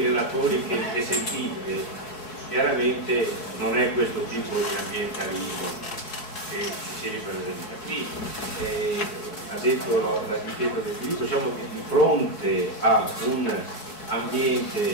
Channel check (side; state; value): right; late; 4.7 ms